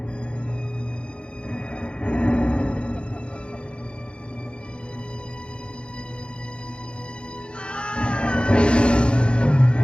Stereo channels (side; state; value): right; late; 0.055 ms